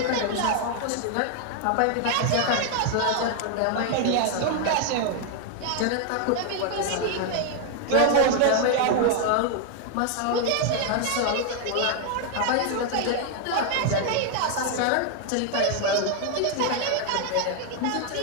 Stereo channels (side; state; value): both; different; correlation 0.00